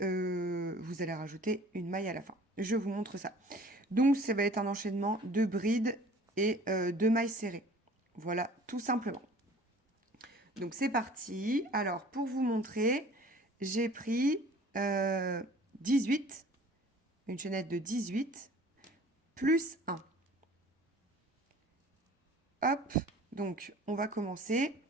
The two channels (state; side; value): normal; both; correlation 0.48